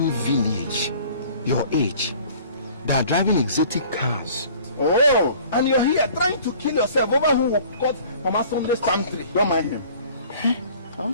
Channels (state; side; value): inverted; both; correlation -0.50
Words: village, your age, they are driving exotic cars. Oh, and you're here trying to kill yourself over who caught Mama Sunday's palm tree. Don't mind him.